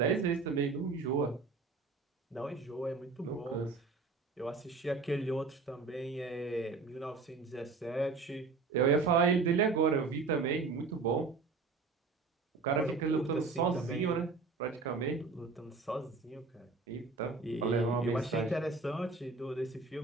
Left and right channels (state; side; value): quieter; left; 4.2 dB